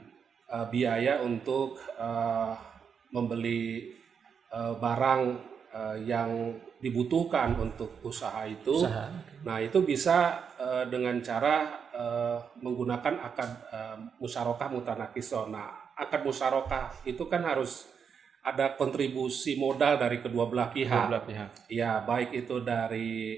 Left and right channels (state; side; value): quieter; left; 6.7 dB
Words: biaya untuk membeli barang yang dibutuhkan untuk usaha itu. Nah, itu bisa dengan cara menggunakan akad musyarakah mutanakisoh. Nah, akad musyarakah itu kan harus ada kontribusi modal dari kedua belah pihak. Ya, baik itu dari